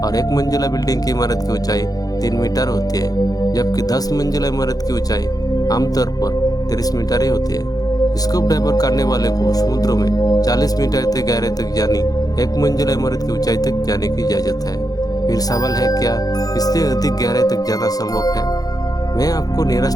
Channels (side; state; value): right; late; 0.18 ms